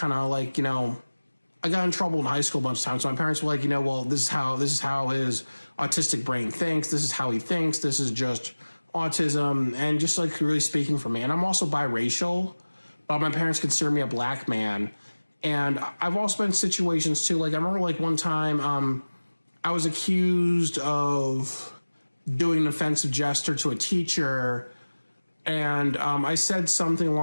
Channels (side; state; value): both; inverted; correlation -1.00